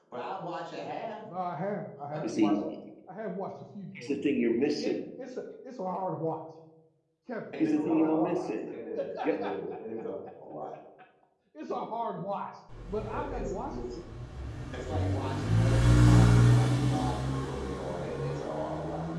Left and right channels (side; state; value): both; identical; correlation 1.00